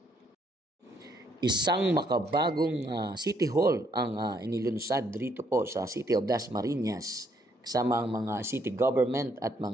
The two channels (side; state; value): both; normal; correlation 0.70